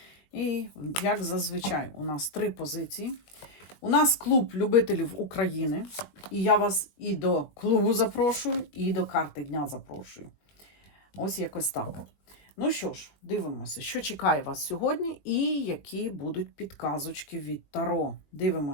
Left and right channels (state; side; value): late; right; 20 ms